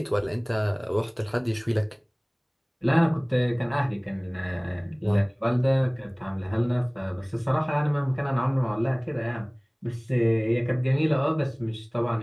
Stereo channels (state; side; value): identical; both; correlation 1.00